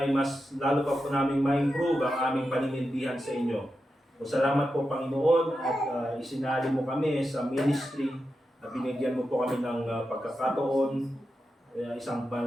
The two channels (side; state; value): both; normal; correlation 0.89